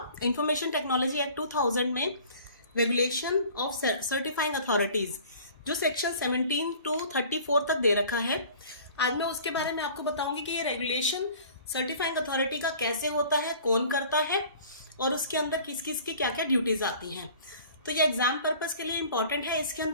इंफॉर्मेशन टेक्नोलॉजी एक्ट 2000 में रेगुलेशन ऑफ सर्टिफाइंग अथॉरिटीज, जो सेक्शन 17 to 34 तक दे रखा है। आज मैं उसके बारे में आपको बताऊंगी कि ये रेगुलेशन सर्टिफाइंग अथॉरिटी का कैसे होता है, कौन करता है और उसके अंदर किस किस की क्या क्या ड्यूटीज आती हैं। तो ये एग्जाम पर्पस के लिए इंपॉर्टेंट है। इसके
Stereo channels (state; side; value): inverted; both; correlation -0.47